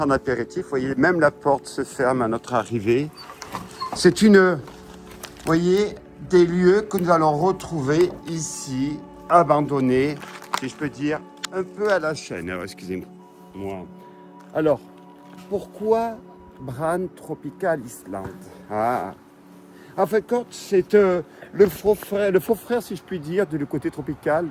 en apéritif. Vous voyez, même la porte se ferme à notre arrivée. C'est vous voyez, des lieux que nous allons retrouver ici, abandonnés, si je peux dire, un peu à la chaîne. Alors, excusez-moi. Alors, pourquoi Bran Tropical Island? En fait, c'est le faux frère, si je puis dire, du côté tropical,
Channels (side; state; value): both; identical; correlation 1.00